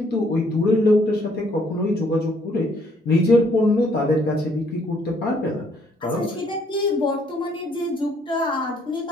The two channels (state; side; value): normal; both; correlation 0.66